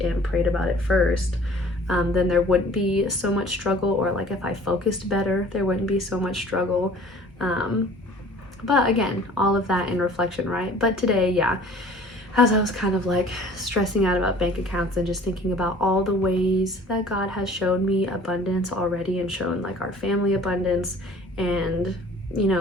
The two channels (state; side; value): normal; both; correlation 0.49